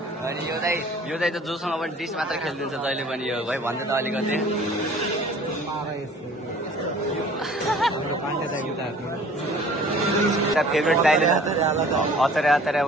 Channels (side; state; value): both; normal; correlation 0.50